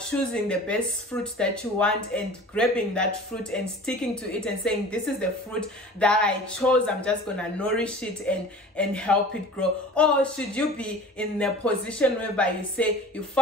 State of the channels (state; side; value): normal; both; correlation 0.41